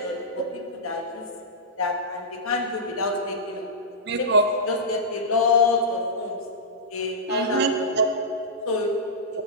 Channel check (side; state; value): both; normal; correlation -0.14